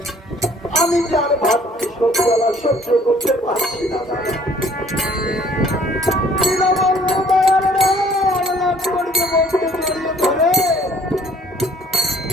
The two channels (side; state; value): both; normal; correlation 0.58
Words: আমি কি আর ভাবছি সত্যলা সহ্য করতে পারছি না দাদা। দীনবন্ধু দয়াল লক্ষ্মণকে বলতে জড়িয়ে ধরে